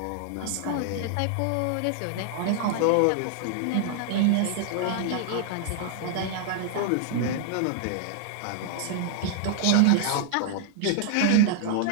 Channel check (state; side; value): different; both; correlation 0.00